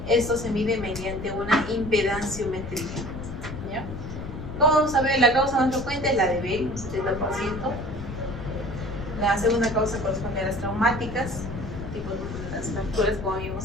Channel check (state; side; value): noise; left; rumble, 8 dB below the sound